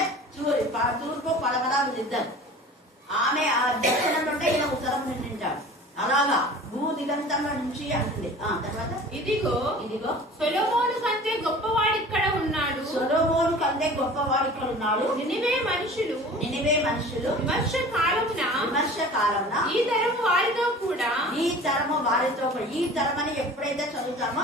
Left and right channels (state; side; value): normal; both; correlation 0.42